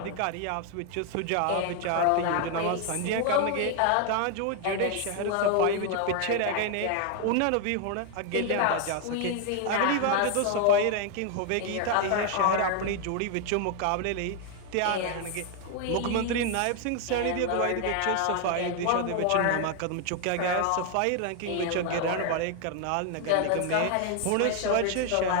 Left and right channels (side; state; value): both; different; correlation 0.00